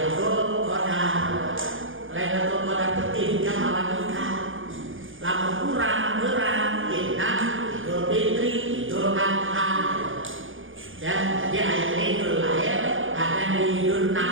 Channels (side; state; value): left; late; 0.58 ms